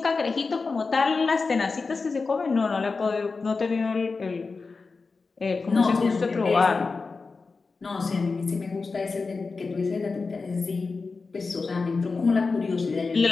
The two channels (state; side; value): quieter; right; 4.3 dB